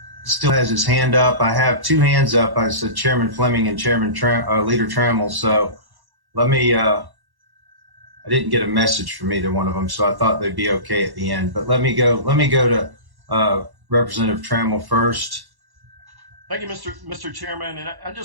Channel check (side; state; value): left; late; 1.1 ms